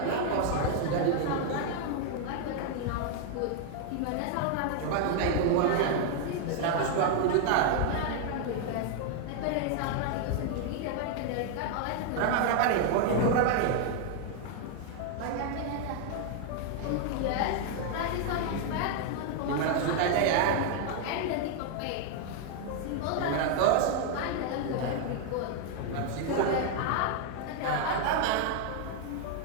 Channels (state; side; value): different; both; correlation 0.00